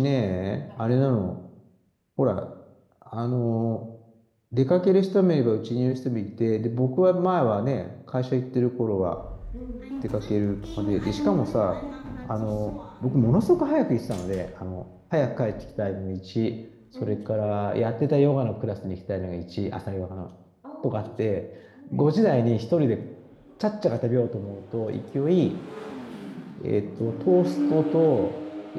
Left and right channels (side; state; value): both; identical; correlation 1.00